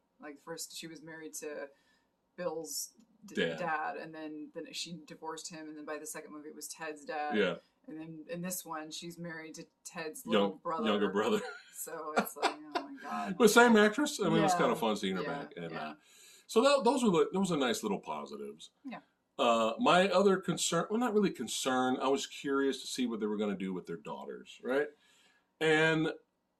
Like first she was married to Bill's dad, and then she divorced him, and then by the second movie it was Ted's dad. Yeah. And then in this one she's married to Ted's younger brother. So it's like, oh my god. But same actress. I mean, it was kind of fun seeing her back. And so those were nice little positives. Yeah. My other concern, well, not really concern, I was curious to see what they were going to do with their daughters, right? And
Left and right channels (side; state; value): both; identical; correlation 1.00